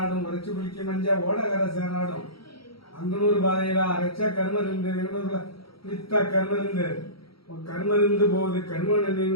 உரைச்சி குளிக்கி மஞ்ச ஓடகரை சேராடும் அங்கனூர் பாதையில அரைச்ச கருமருந்து எங்கூர்ல வித்த கருமருந்து கருமருந்து போகுது கருமன்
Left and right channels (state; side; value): late; right; 0.75 ms